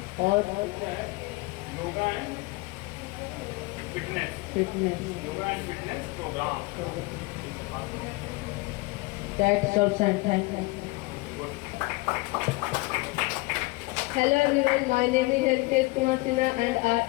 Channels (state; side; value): quieter; right; 23.7 dB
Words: और fitness program. That's all, and thank you. Hello everyone, my name is Ankesh Kumar Sinha and